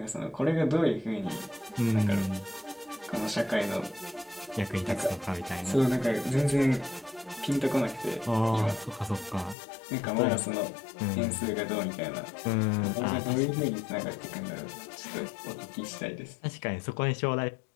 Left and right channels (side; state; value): right; drops out; at 9.6 s